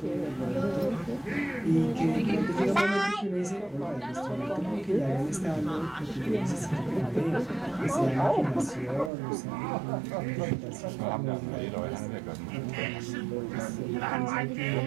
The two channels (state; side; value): drops out; left; at 9.1 s